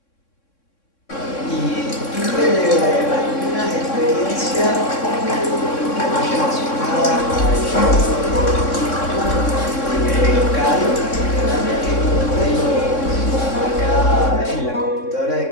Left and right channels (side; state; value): right; late; 3.6 ms